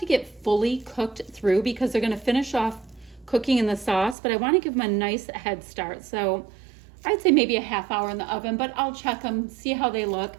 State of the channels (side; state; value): left; drops out; at 4.2 s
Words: get fully cooked through because they're going to finish off cooking in the sauce, but I want to give them a nice head start. So I'd say maybe a half hour in the oven, but I'll check them, see how they look. I